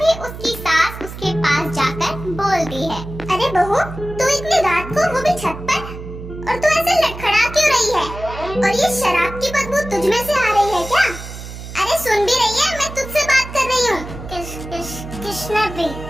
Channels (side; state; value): right; noise; hum, 11 dB below the sound